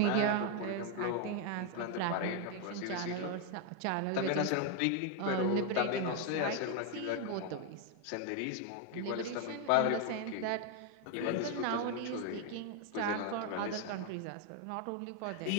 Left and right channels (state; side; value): different; both; correlation 0.01